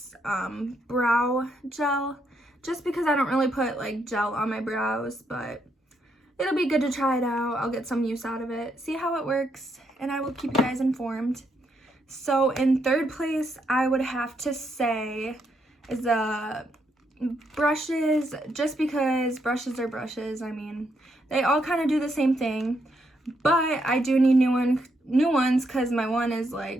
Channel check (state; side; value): normal; both; correlation 0.77